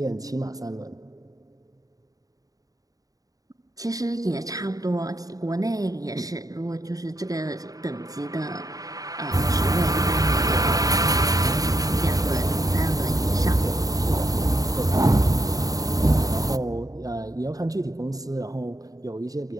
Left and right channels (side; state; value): left; late; 0.18 ms